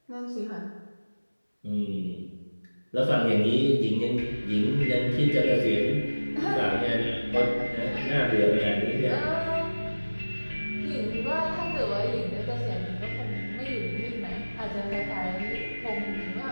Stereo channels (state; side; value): inverted; both; correlation -1.00